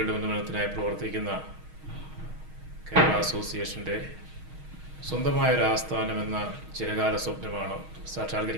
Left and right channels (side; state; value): left; late; 6.4 ms